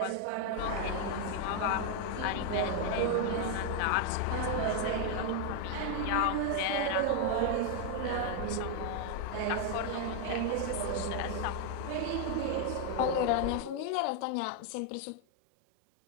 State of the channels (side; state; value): both; different; correlation 0.00